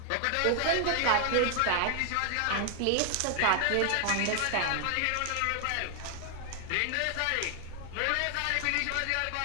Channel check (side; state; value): both; different; correlation 0.00